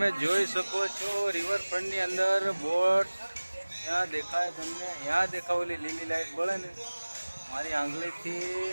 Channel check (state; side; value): inverted; both; correlation -1.00